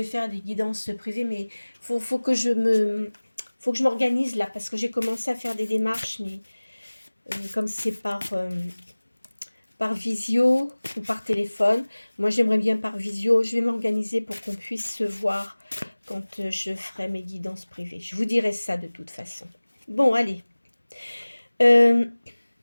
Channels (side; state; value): both; inverted; correlation -1.00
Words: faire des guidances privées. Mais faut que je m'organise là, parce que j'ai commencé à faire des démarches, mais comme c'est par visio ou par téléphone. Moi, j'aimerais bien par visio. Je vais m'organiser pour qu'on puisse se voir quand je ferai mes guidances privées. Je vous dirai ça de toute façon. Bon, allez.